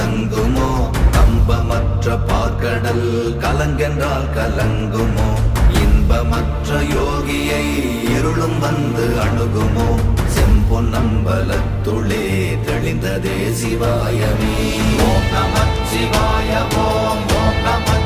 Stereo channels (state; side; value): identical; both; correlation 1.00